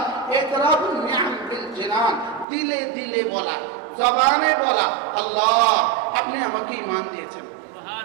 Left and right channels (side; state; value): left; drops out; at 2.5 s